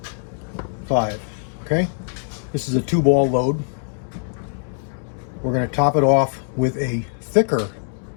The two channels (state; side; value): silent; right; digital silence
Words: 5. Okay, this is a 2-ball load. We're going to top it off with a thicker